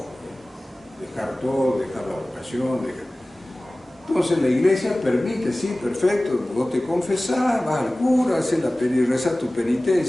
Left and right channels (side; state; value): both; normal; correlation 0.98